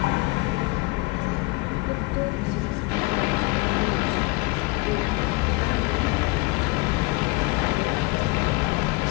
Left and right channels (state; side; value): quieter; right; 25.6 dB